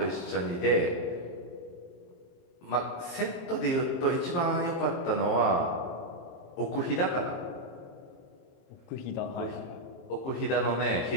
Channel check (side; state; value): right; late; 23 ms